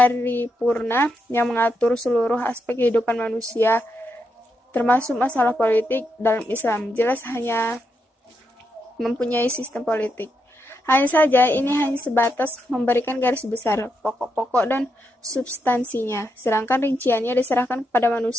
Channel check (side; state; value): both; normal; correlation 0.82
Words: yang mengatur seluruh aspek kehidupan manusia, termasuk masalah politik. Dalam Islam jelas hanya mempunyai sistem politik. Hanya saja ini hanya sebatas memberikan garis besar, pokok-pokok dan substansinya, sedangkan rinciannya diserahkan kepada